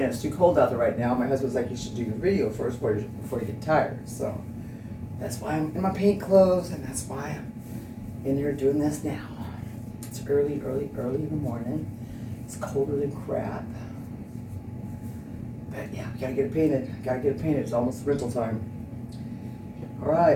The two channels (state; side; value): identical; both; correlation 1.00